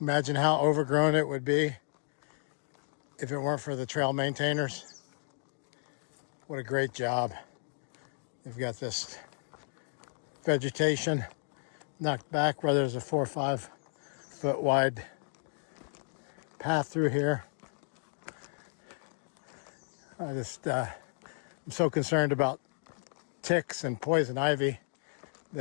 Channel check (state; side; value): silent; right; digital silence